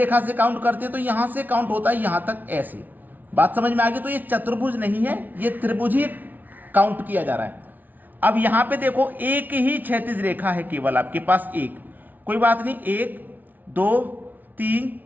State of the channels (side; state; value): left; late; 0.082 ms